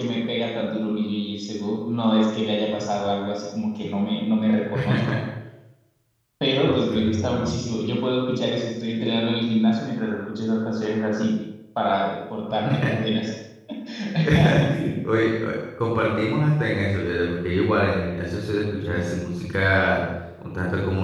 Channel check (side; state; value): both; identical; correlation 1.00